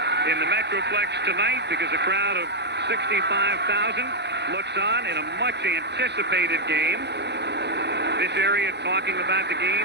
in the Metroplex tonight because a crowd of 65,000 looks on in a much anticipated game. This area talking about the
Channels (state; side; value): late; left; 0.50 ms